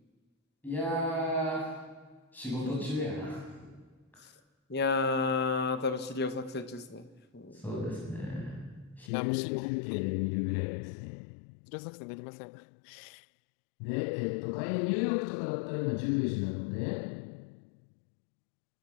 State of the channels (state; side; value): drops out; right; at 9.1 s